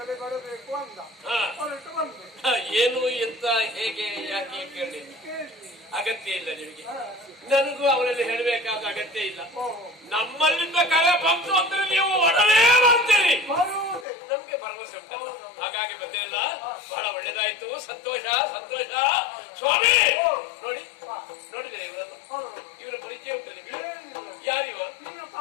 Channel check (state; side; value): drops out; right; at 14.1 s